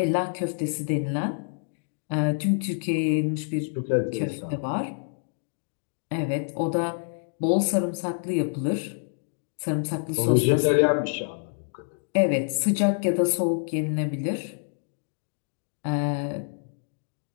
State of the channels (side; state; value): right; silent; digital silence